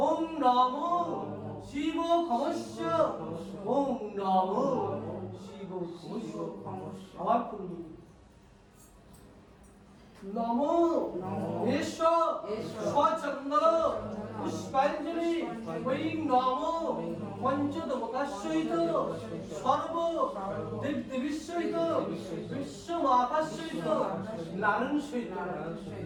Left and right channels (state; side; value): identical; both; correlation 1.00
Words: ওম নমো শিব খমস্য ওম নমো শিব খমস্য। আবার পূর্ণ নমো এষ সচন্দন পুষ্পাঞ্জলি ওই নমো পঞ্চদেবতার সহিত সর্ব দেবদেবীর সহিত বিশ্বমাতার সহিত নারায়ণ সহিত